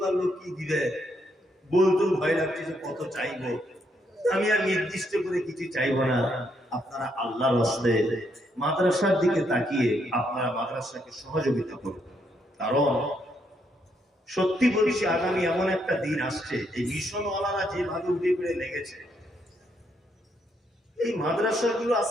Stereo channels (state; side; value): normal; both; correlation 0.75